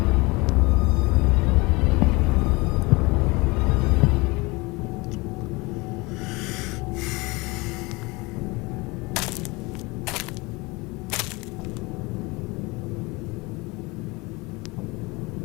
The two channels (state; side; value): quieter; right; 24.7 dB